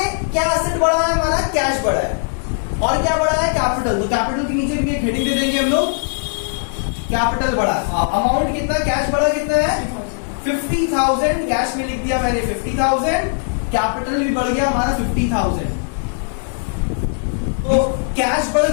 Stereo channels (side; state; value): right; silent; 66 dB below the other